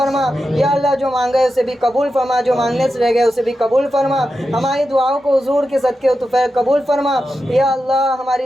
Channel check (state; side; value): normal; both; correlation 0.90